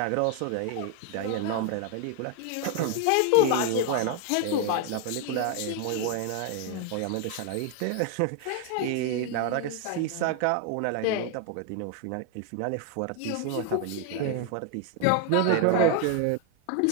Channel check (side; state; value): both; different; correlation 0.01